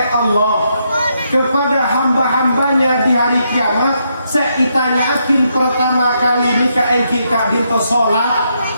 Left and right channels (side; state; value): both; inverted; correlation -0.78